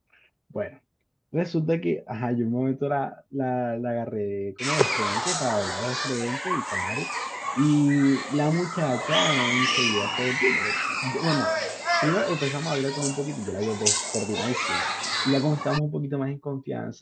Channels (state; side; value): identical; both; correlation 1.00